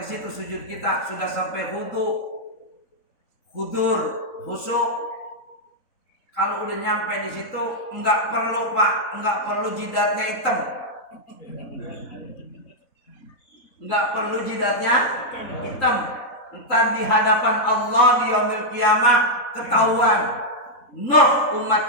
situ sujud kita sudah sampai hudu, hudur, khusyuk. Kalau udah nyampe di situ enggak perlu Pak, enggak perlu jidatnya hitam. Enggak perlu jidatnya hitam. Entar di hadapan Allah di yaumil kiamah ketahuan. Noh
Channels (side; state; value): right; late; 3.8 ms